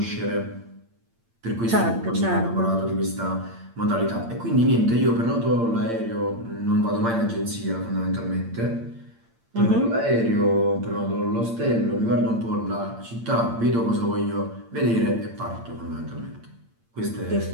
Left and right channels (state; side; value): late; left; 8.7 ms